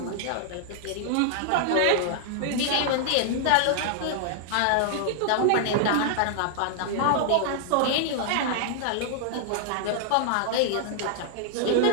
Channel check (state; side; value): different; both; correlation -0.01